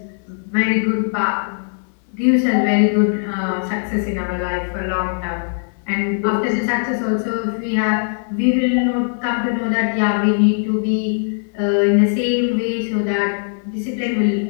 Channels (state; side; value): silent; right; 66 dB below the other